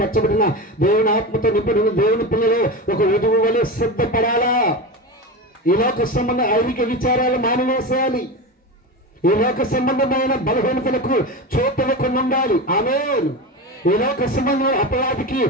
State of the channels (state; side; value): normal; both; correlation 0.23